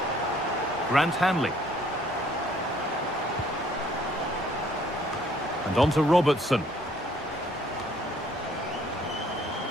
Grant Hanley. And on to Robertson.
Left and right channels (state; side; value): normal; both; correlation 0.61